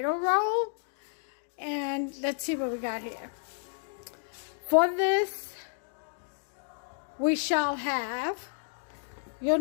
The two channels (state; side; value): silent; right; digital silence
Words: roll. And let's see what we got here. For this, we shall have, you'll